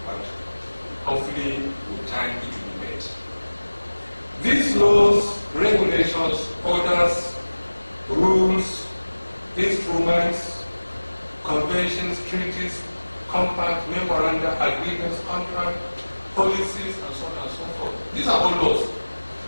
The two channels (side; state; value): both; inverted; correlation -1.00